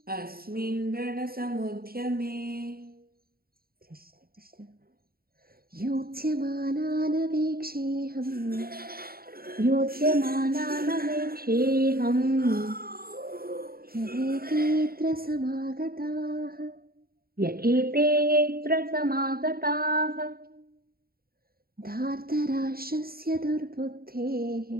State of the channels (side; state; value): left; late; 0.44 ms